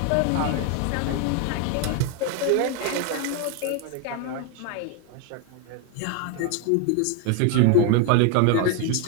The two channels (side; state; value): both; different; correlation 0.01